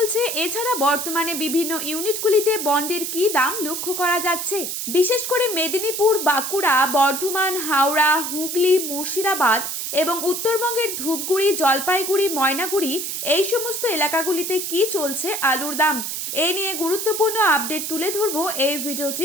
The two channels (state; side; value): noise; right; hiss, 4 dB below the sound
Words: এছাড়া বর্তমানে বিভিন্ন ইউনিটগুলিতে বন্ডের কি দাম লক্ষ্য করা যাচ্ছে। বিশেষ করে মেদিনীপুর, বাঁকুড়া, বর্ধমান, হাওড়া, হুগলি, মুর্শিদাবাদ এবং উত্তরবঙ্গের ধূপগুড়ি, জলপাইগুড়ি, ময়নাগুড়ি এই সমস্ত এলাকাগুলিতে কি চলছে আলুর দাম, এই নিয়ে গুরুত্বপূর্ণ আপডেট তুলে ধরবো এই